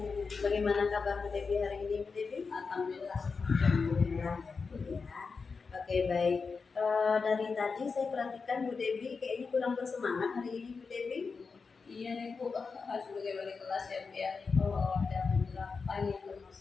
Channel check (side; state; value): right; quieter; 4.9 dB